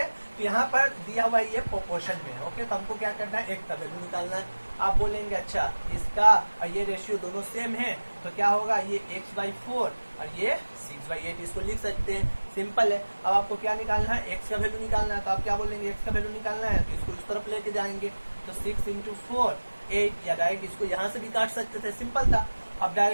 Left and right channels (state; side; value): inverted; both; correlation -1.00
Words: तो यहाँ पर दिया हुआ है ये प्रोपोर्शन में। ओके, तो हमको क्या करना है, एक का वैल्यू निकालना है। आप बोलेंगे अच्छा इसका और ये रेशियो दोनों सेम है तो क्या होगा, ये x/4 और ये 6/8, इसको लिख सकते हैं, सिंपल है। अब आपको क्या निकालना है, x का वैल्यू निकालना है, तो आप क्या बोलेंगे, x का वैल्यू निकालना है तो इसको इस तरफ लेके जाएंगे, तो 6 × 4 8, या डायरेक्ट इसको यहाँ से भी काट सकते थे, सिंपल था। अब